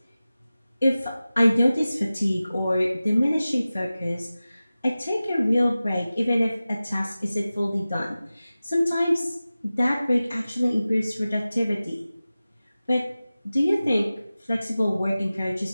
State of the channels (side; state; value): both; inverted; correlation -0.96